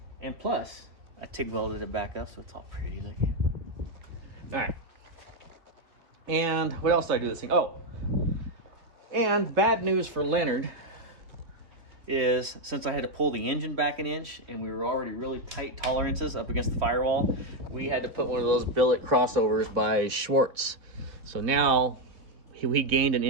And plus, I TIG welded it back up so it's all pretty looking. All right. And what else did I do this thing? Oh, and bad news for Leonard is since I had to pull the engine back an inch and we were already really tight tolerances up against the firewall, we had to put one of those billet crossovers by Schwartz. So now we gained an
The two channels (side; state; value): left; late; 3.2 ms